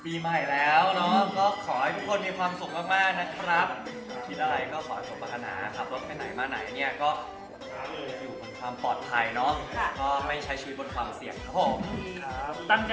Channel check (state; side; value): identical; both; correlation 1.00